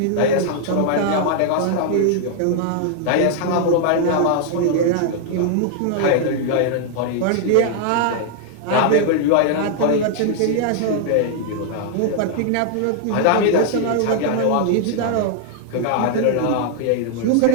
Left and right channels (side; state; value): both; different; correlation 0.00